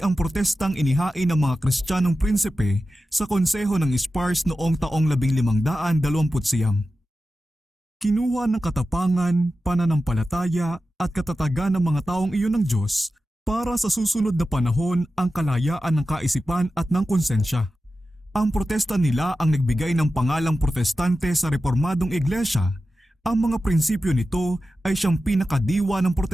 ang protestang inihain ng mga Kristiyanong prinsipe sa konseho ng Spars noong taong 1529. Kinuha ng katapangan, pananampalataya at katatagan ng mga taong iyon ng Diyos para sa susunod na panahon ang kalayaan ng kaisipan at ng konsensya. Ang protesta nila ang nagbigay ng pangalang protestante sa reformadong iglesia. Ang mga prinsipyo nito ay siyang pinakadiwa ng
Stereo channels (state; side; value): normal; both; correlation 0.93